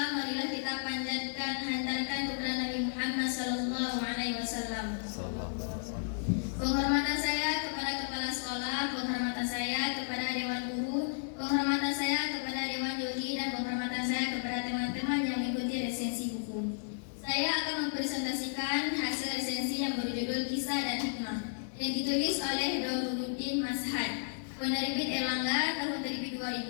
marilah kita panjatkan hantarkan kepada Nabi Muhammad sallallahu alaihi wasallam. Penghormatan saya kepada kepala sekolah, penghormatan saya kepada dewan guru, penghormatan saya kepada dewan juri, dan penghormatan saya kepada teman-teman yang mengikuti resensi buku. Saya akan mempresentasikan hasil resensi yang berjudul Kisah dan Hikmah yang ditulis oleh Dauruddin Mashhad, penerbit Erlangga tahun terbit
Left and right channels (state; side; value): silent; right; digital silence